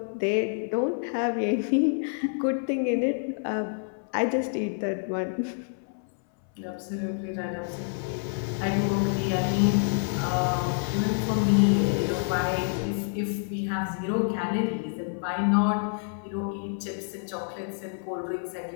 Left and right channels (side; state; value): right; silent; 60 dB below the other